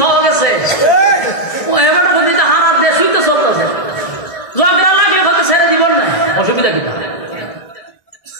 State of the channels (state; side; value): late; right; 1.7 ms